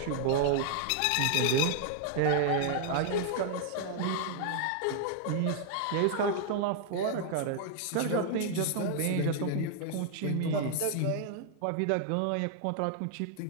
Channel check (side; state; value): both; different; correlation 0.00